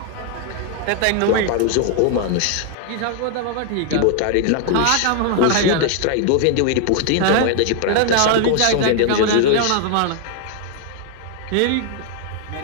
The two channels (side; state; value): both; different; correlation 0.00